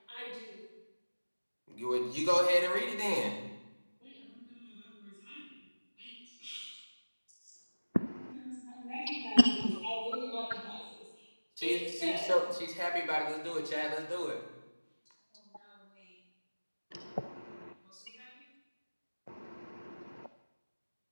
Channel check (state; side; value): inverted; both; correlation -1.00